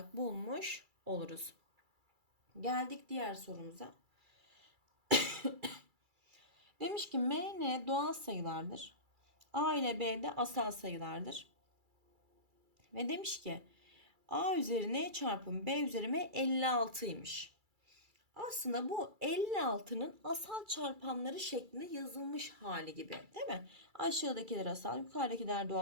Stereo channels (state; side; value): late; left; 2.3 ms